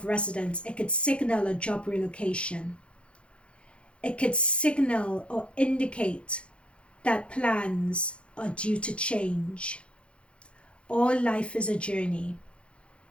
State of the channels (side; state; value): right; late; 0.059 ms